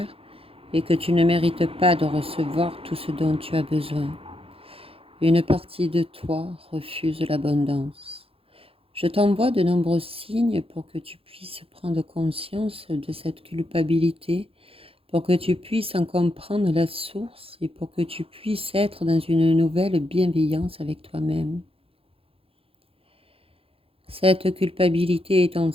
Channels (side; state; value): left; late; 0.27 ms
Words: et que tu ne mérites pas de recevoir tout ce dont tu as besoin. Une partie de toi refuse l'abondance. Je t'envoie de nombreux signes pour que tu puisses prendre conscience de cette culpabilité, pour que tu puisses en comprendre la source et pour que tu puisses être dans une nouvelle bienveillance avec toi-même. Cette culpabilité